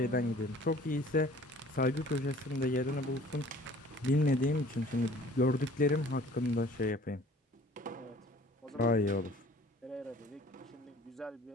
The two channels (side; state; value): both; normal; correlation 0.51